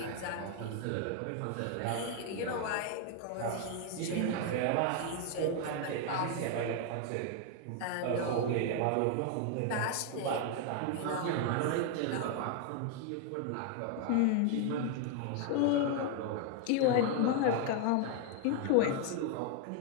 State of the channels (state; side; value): different; both; correlation 0.00